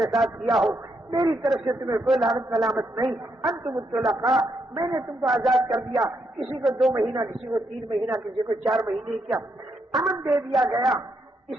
ساتھ کیا ہو میری طرف سے تمہیں کوئی لعنت ملامت نہیں، انتم الطلقاء، میں نے تم کو آزاد کر دیا، کسی کو 2 مہینہ، کسی کو 3 مہینہ، کسی کو 4 مہینے کیا امن دے دیا گیا۔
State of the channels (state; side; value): normal; both; correlation 0.79